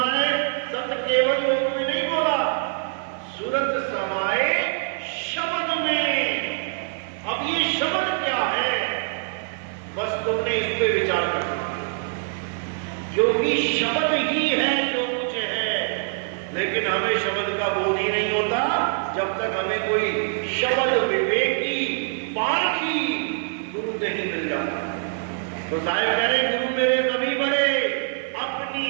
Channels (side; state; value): left; silent; 57 dB below the other